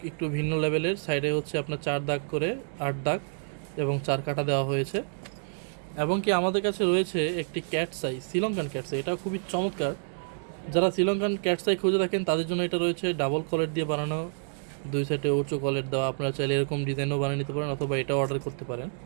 একটু ভিন্ন লেভেলের। সাইডে হচ্ছে আপনার 4 দাগ করে 8 দাগ এবং 4 কাটা দেওয়া হয়েছে। এবং কি আমাদের কাছে রয়েছে একটি ক্যাটসাই, শ্রীলঙ্কান ক্যাটসাই। এটাও খুবই চমৎকার। যারা শ্রীলঙ্কান ক্যাটসাই খুঁজে থাকেন তাদের জন্য এটা রয়েছে ডাবল কলেট দিয়ে বানানো, 2 সাইডে উঁচু কলেট দেওয়া। আপনারা চাইলে এরকম ডিজাইনও বানিয়ে নিতে পারেন অথবা এটাও অর্ডার করতে পারেন।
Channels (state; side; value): silent; left; digital silence